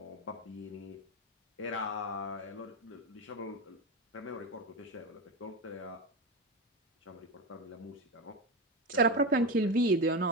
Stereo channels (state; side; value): normal; both; correlation 0.17